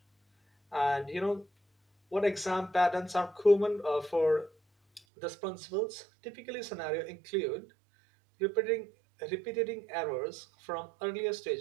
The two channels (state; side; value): drops out; left; at 5.0 s